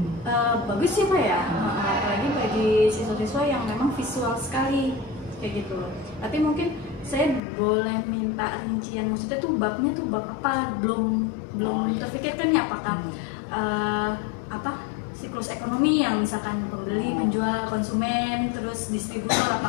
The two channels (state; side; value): drops out; right; at 7.4 s